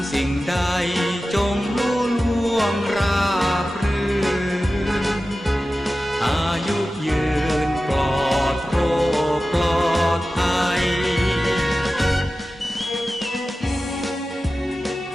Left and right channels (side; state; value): both; normal; correlation 0.94